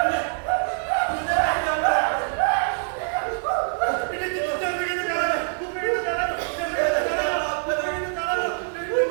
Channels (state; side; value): silent; left; 61 dB below the other